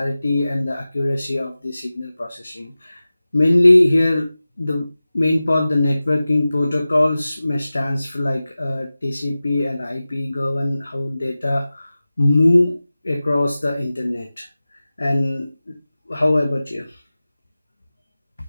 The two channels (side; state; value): both; inverted; correlation -0.96